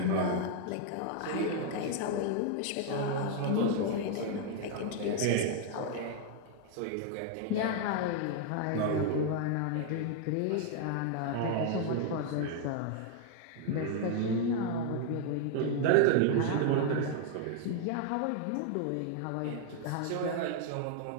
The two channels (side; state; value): both; different; correlation 0.00